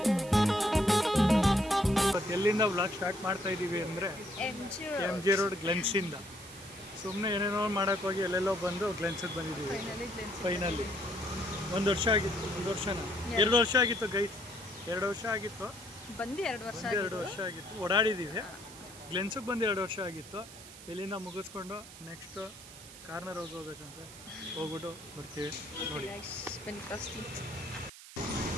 ಎಲ್ಲಿಂದ vlog start ಮಾಡ್ತಾ ಇದ್ದೀವಿ ಅಂದರೆ ಎಮ್ ಜಿ ರೋಡ್ ಗ್ಲೆನ್ಸಿಂದ. ಸುಮ್ಮನೆ ಏನೇನೋ ಮಾಡೋಕ್ಕೆ ಹೋಗಿ ಎಲ್ಲೆಲ್ಲೋ ಬಂದು ಗ್ಲೆನ್ಸಿಗೆ ಬಂದಿದ್ದೀವಿ ಫೈನಲಿ. ಒಂದು ವರ್ಷ ಆಗಿತ್ತು, 2 ವರ್ಷ ಆಗಿತ್ತು ಗೈಸ್, 2 ವರ್ಷ ಆಗಿತ್ತು ಬಂದು 2 ವರ್ಷ ಆಗಿತ್ತು. ಓಡಾಡಿದ್ದೀವಿ. ಗ್ಲೆನ್ಸಿಗೆ ಬಂದು 2 ವರ್ಷ ಆಗಿತ್ತು. ಇಲ್ಲಿಂದ ಮುಗಿಸ್ಕೊಂಡು ನೆಕ್ಸ್ಟ್ ಕಾರ್ನರ್ ಹೌಸ್ ಹೋಗ್ಬೇಕಂತ ಹೋಗ್ಬಿಟ್ಟು ಬರ್ತೀವಿ ನೋಡಿ.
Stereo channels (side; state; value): right; noise; hiss, 16 dB below the sound